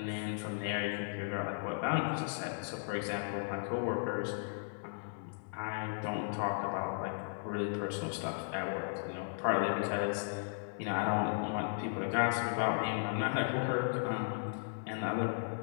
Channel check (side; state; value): right; silent; digital silence